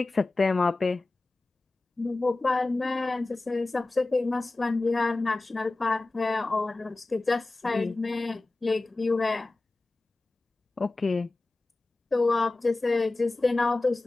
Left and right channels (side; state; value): right; quieter; 3.1 dB